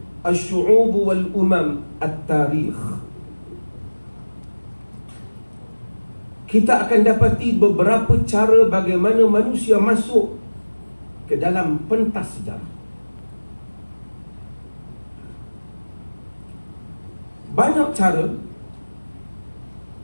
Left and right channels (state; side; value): inverted; both; correlation -1.00